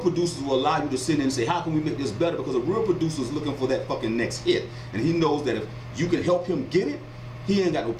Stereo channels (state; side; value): identical; both; correlation 1.00